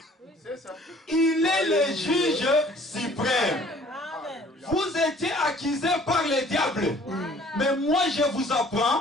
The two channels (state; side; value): normal; both; correlation 0.54